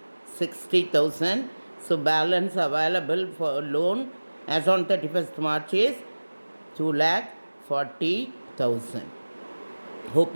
60,000. So balance available for loan as on 31st March is 2,40,000. Hope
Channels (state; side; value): inverted; both; correlation -1.00